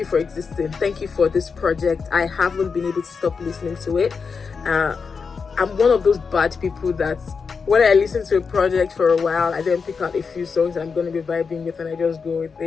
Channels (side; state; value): right; quieter; 5.4 dB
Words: for existing. Thank you for this project. I haven't been able to stop listening to it. I'm one of those bad people that when I listen to a project for a while, I then pick out a few songs that I'm going to be vibing with and I just go with